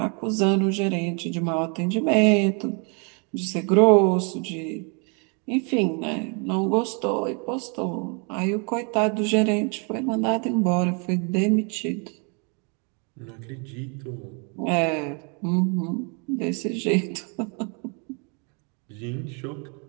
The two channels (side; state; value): left; quieter; 35.6 dB